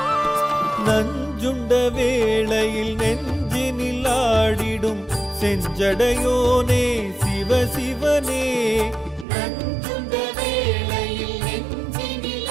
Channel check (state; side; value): drops out; left; at 9.2 s